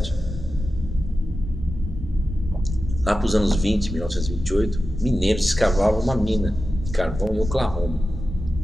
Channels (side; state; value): both; normal; correlation 0.92